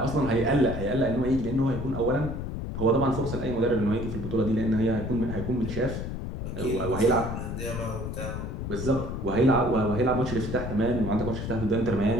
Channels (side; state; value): left; noise; rumble, 5 dB below the sound